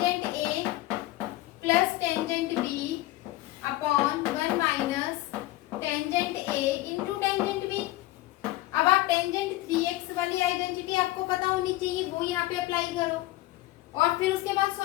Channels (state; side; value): quieter; right; 17.3 dB